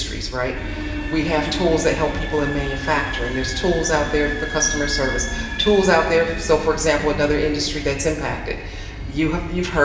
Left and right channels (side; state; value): both; identical; correlation 1.00